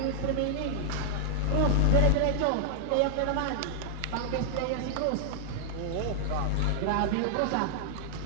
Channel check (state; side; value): different; both; correlation 0.00